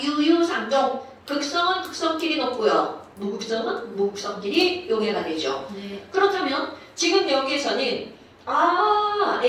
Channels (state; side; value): identical; both; correlation 1.00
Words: 유유상종. 극성은 극성끼리 높고요. 무극성은 무극성끼리 용해가 되죠. 네. 그렇다면, 지금 여기에서는,